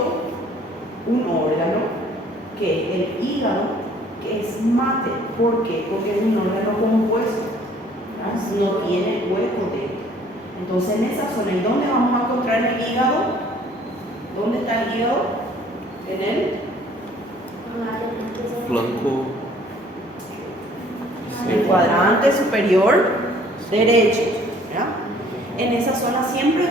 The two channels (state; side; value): normal; both; correlation 0.57